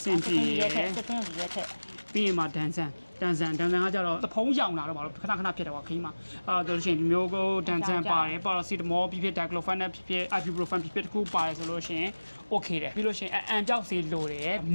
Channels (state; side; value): inverted; both; correlation -1.00